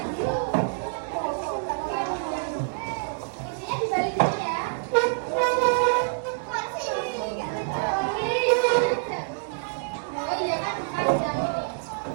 Kursinya dibalik dulu ya. Oh iya kan, ada ini.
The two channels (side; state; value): left; silent; 59 dB below the other